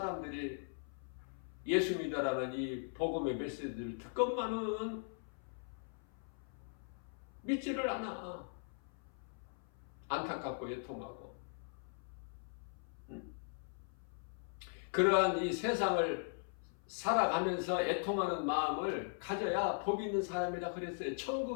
예수 믿어라는 이 복음의 메시지를 듣건만은 믿지를 않아. 안타깝고 애통하고. 그러한 이 세상을 살아가면서 애통하는 마음을 가져야 복 있는 사람이라 그랬어요.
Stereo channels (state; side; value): silent; right; 51 dB below the other